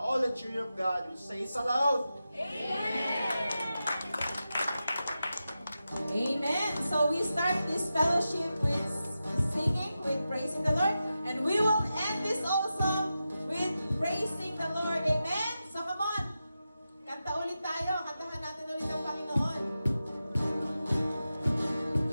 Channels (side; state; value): both; inverted; correlation -0.91